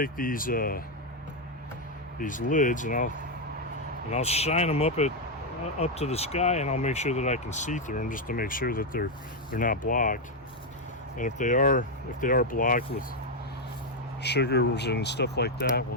these lids and I'll shine them up to the sky, and I'll make sure that I can see through them, just to make sure that they're not blocked. And if they are blocked with sugars and stuff like that, well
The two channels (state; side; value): normal; both; correlation 0.02